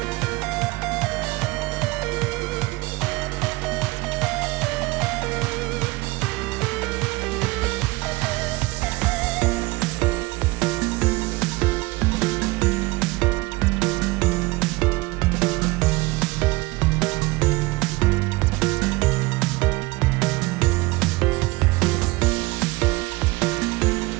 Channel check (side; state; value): left; quieter; 22.3 dB